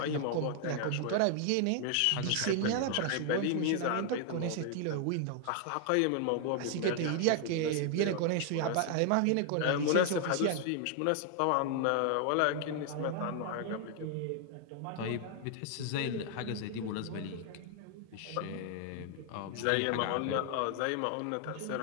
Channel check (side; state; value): both; different; correlation 0.00